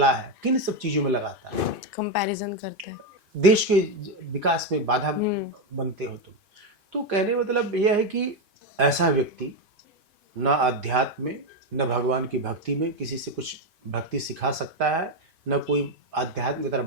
है, किन सब चीज़ों में लगाता है। कंपैरिजन करते हैं, देश के विकास में बाधा बनते हो तुम। तो कहने मतलब यह है कि ऐसा व्यक्ति न अध्यात्म में, न भगवान की भक्ति में किसी से कुछ भक्ति सिखा सकता है, न कोई आध्यात्म की तरफ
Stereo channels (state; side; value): late; left; 2.5 ms